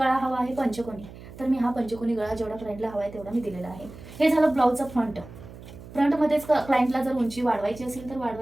हवा आहे पंचकोनी, तर मी हा पंचकोनी गळा जेवढा क्लायंटला हवा आहे तेवढा मी दिलेला आहे। हे झालं ब्लाऊजचा फ्रंट। फ्रंटमध्येच क्लायंटला जर उंची वाढवायची असेल तर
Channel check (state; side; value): noise; right; hum, 16 dB below the sound